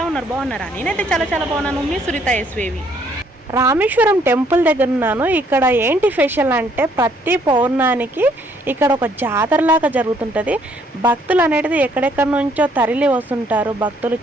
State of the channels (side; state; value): both; normal; correlation 0.66